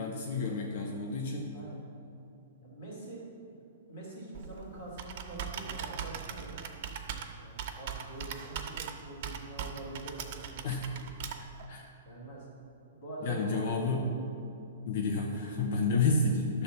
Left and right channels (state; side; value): inverted; both; correlation -0.32